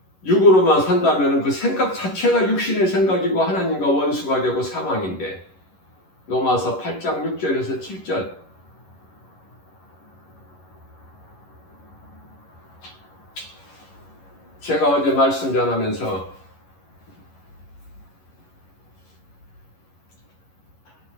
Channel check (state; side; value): late; right; 11 ms